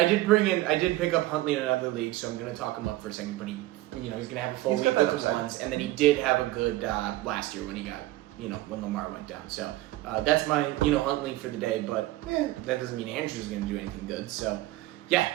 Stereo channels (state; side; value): quieter; left; 17.2 dB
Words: up Huntley in another league, so I'm gonna talk him up for a second. But he's gonna have a full He's week got that with the upside. ones, and then he did have a good last year when he got when Lamar went down. So that's my Huntley for the day. But that doesn't mean Andrews is gonna do anything good. So